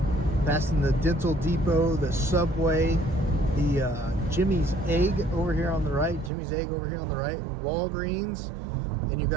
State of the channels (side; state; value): left; drops out; at 6.3 s